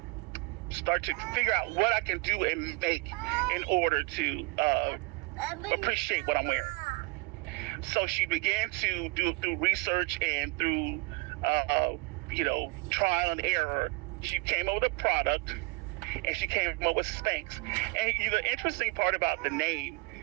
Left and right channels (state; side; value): quieter; left; 26.5 dB